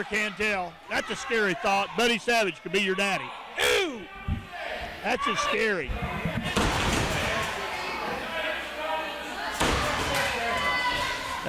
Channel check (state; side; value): identical; both; correlation 1.00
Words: can tell. That's a scary thought. Buddy Savage could be your daddy. Ooh! That's just scary.